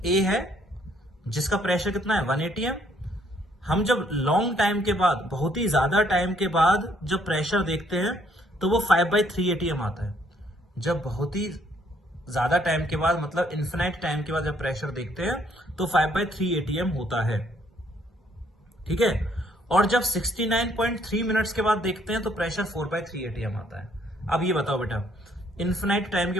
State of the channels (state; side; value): normal; both; correlation 0.67